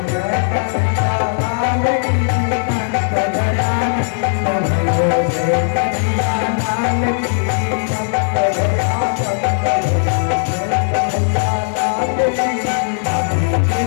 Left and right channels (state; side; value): silent; right; digital silence